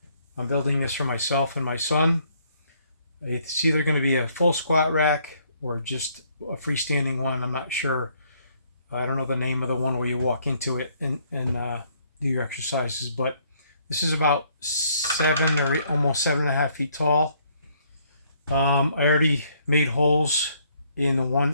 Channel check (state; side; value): inverted; both; correlation -0.67